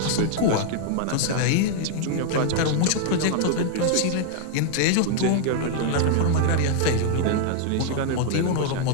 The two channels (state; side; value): different; both; correlation 0.00